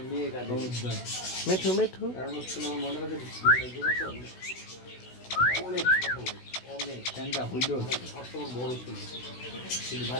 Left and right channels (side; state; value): right; late; 16 ms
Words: মেয়ে কাঁদে। মিঠু মিঠু। কারণ হচ্ছে আমার মনে হয় অনেক অনেক ট্যাঙ্কা হইল সবসময় বড় ছিল, কিন্তু